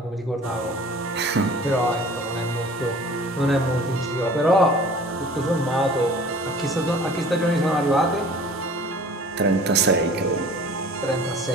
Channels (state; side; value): normal; both; correlation 0.47